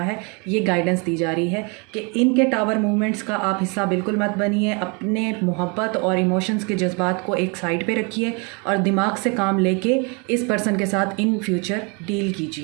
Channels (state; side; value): quieter; left; 32.5 dB